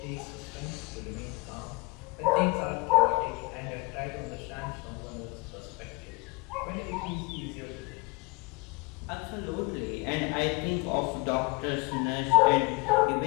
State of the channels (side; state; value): right; quieter; 27.2 dB